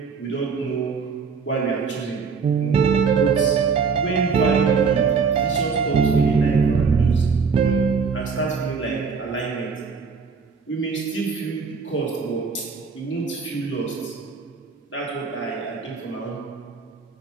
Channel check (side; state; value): left; quieter; 5.4 dB